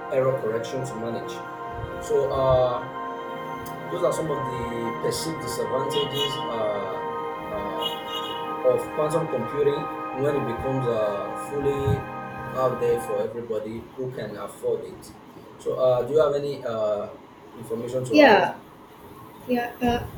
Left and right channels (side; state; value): both; identical; correlation 1.00